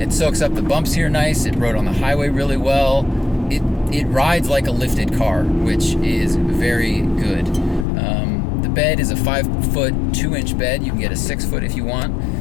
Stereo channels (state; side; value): drops out; right; at 7.9 s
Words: soaks up the bumps here nice. It rode on the highway really well. It rides like a lifted car, which is very good. The bed is a 5-foot 2-inch bed. You can get a 6-foot if you want.